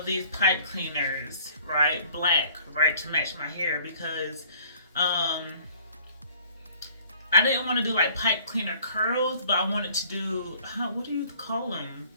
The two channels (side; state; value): both; inverted; correlation -0.54